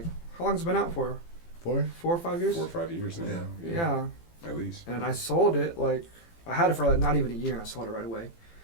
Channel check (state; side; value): late; right; 18 ms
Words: How long's it been out for? 4? 4 or 5 years. 4 or 5 years now. Yeah. At least. And I sold it like I had it for like not even a year, and I sold it right away.